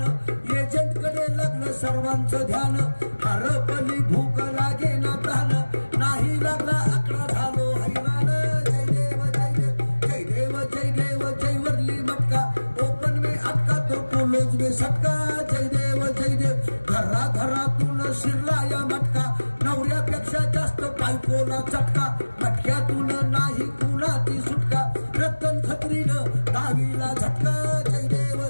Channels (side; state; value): both; inverted; correlation -1.00